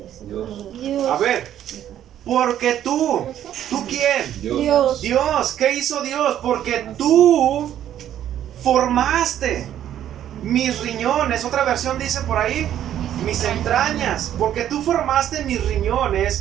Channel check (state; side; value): quieter; left; 11.1 dB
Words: Dios. A ver, porque ¿tú quién? Dios. Dios, ¿qué hizo Dios? Porque tú formaste mis riñones. Otra versión dice por ahí, mis entrañas. Porque tú formaste mis